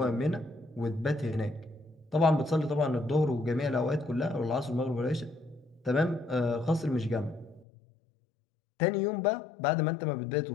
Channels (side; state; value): right; drops out; at 7.7 s